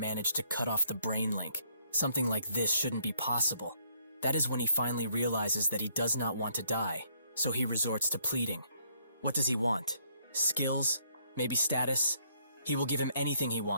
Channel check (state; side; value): inverted; both; correlation -0.68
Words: to cut off the brain link. Something like this shouldn't be possible. That is when he finally realizes that he does not want to die, so he resorts to pleading. What does he want? Skills? Maybe status? He will give him anything he